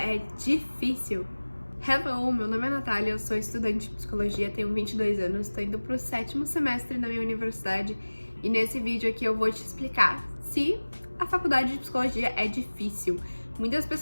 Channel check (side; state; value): both; inverted; correlation -1.00